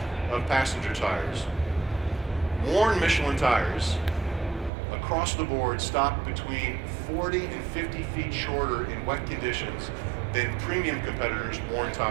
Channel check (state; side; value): drops out; left; at 4.7 s